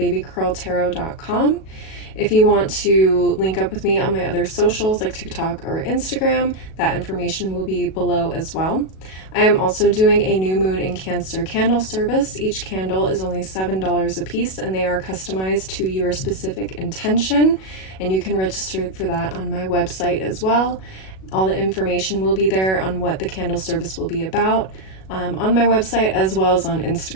If you want to link up with me on my other socials like TikTok or Instagram, that information will be below as well. I am also doing a new moon in Cancer candle service. Each candle is only $7 a piece, and they are customized to your specific intention, and you can register for that on my website as well. All the information will be there on what the candle service will be about on my website as well as on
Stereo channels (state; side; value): late; right; 37 ms